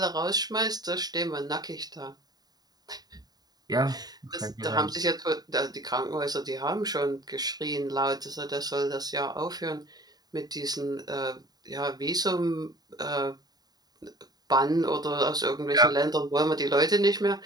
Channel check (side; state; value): left; late; 0.19 ms